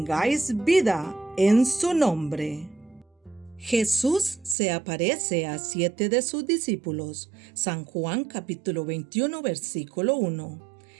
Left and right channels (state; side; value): drops out; left; at 4.5 s